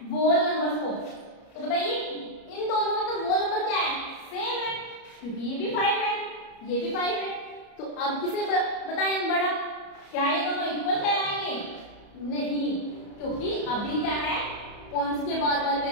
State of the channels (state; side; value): late; right; 34 ms